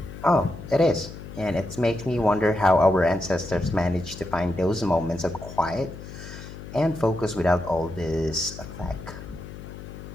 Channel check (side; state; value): left; noise; hum, 13 dB below the sound